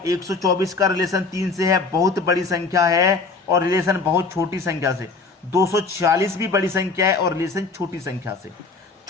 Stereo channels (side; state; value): right; quieter; 4.1 dB